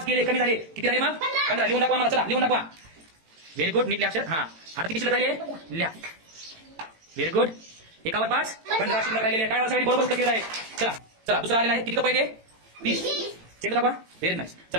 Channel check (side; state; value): left; late; 18 ms